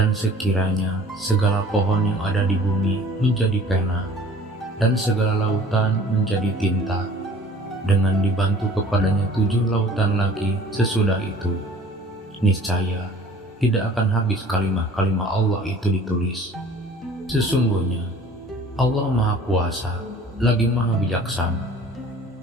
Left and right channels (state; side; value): normal; both; correlation 0.48